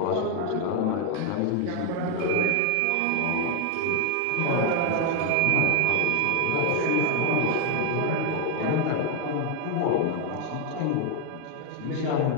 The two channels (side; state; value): both; different; correlation 0.00